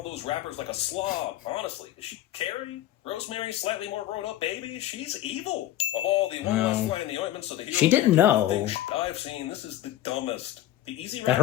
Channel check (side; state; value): right; quieter; 13.5 dB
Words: those wrappers like a slob. Honestly, is she Carrie? Rosemary, slightly more grown-up baby? She's evil. Of all the Well, flying the ointments of the hero, she didn't know I've seen, this is the dumbest. The easy that